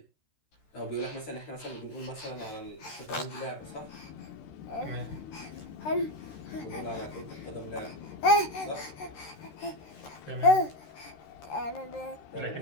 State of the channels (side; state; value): right; late; 13 ms